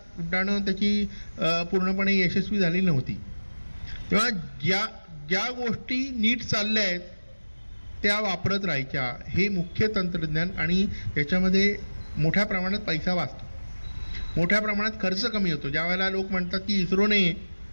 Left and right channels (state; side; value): inverted; both; correlation -1.00